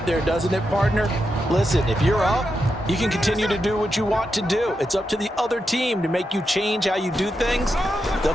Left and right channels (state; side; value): normal; both; correlation 0.86